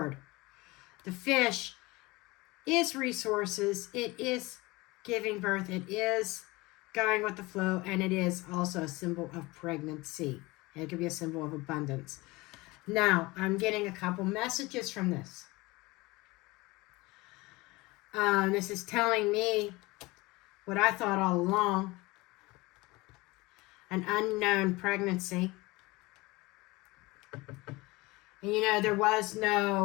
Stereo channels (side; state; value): right; quieter; 22.2 dB